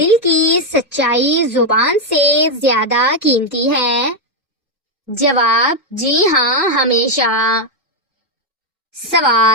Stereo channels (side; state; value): both; normal; correlation 0.03